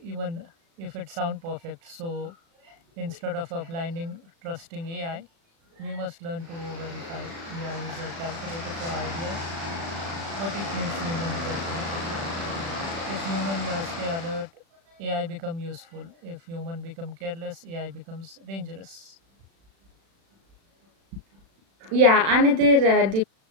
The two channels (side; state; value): left; late; 36 ms